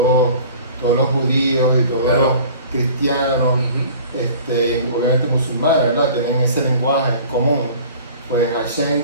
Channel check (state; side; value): inverted; both; correlation -0.45